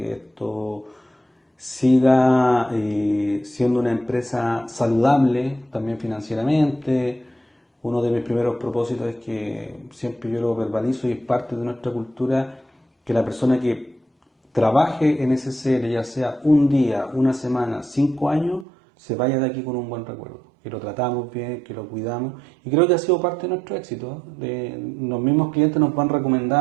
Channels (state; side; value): drops out; left; at 18.7 s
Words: esto siga siendo una empresa saludable también financieramente. Uno de mis primeros propósitos es que siempre yo lo verbalizo y es parte de nuestra cultura que la persona que trabaje en SCL, ya sea un día, una semana, 5 años, se vaya de aquí con un buen recuerdo, que lo tratamos bien, que lo cuidamos, y creo que ha sido parte de nuestro éxito. Los mismos clientes nos van